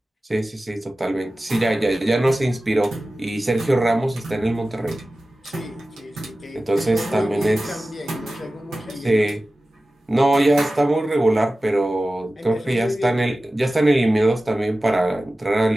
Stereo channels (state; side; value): normal; both; correlation 0.95